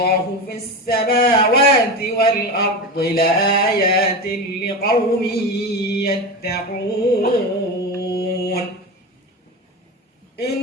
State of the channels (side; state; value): both; normal; correlation 0.23